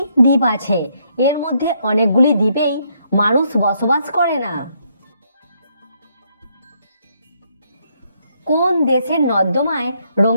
দ্বীপ আছে। এর মধ্যে অনেকগুলি দ্বীপেই মানুষ বসবাস করে না। কোন দেশের নর্দমায়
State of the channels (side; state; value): both; inverted; correlation -0.73